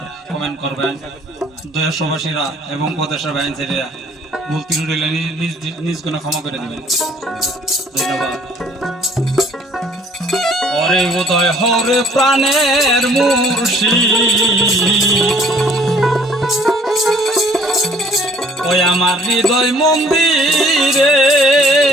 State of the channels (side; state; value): both; normal; correlation 0.57